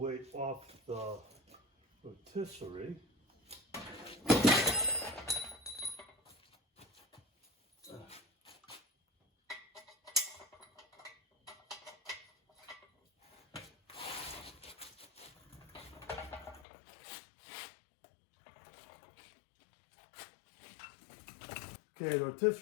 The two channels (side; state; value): right; drops out; at 16.7 s